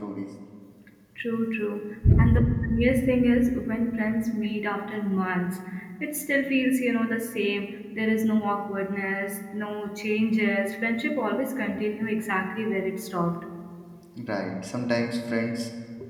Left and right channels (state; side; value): identical; both; correlation 1.00